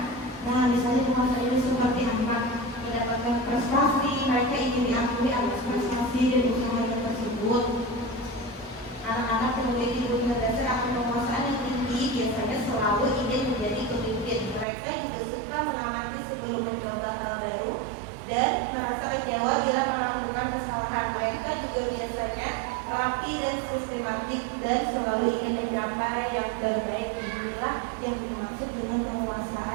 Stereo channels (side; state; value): left; drops out; at 14.7 s